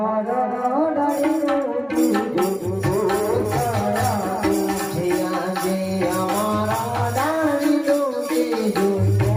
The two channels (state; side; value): identical; both; correlation 1.00